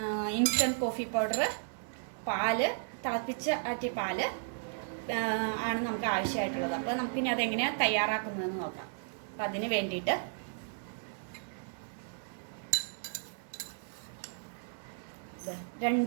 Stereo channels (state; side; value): silent; left; 55 dB below the other